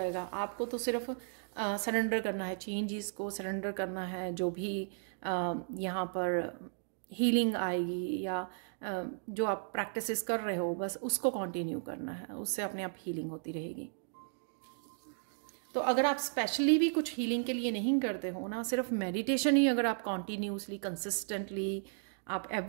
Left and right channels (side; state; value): left; silent; digital silence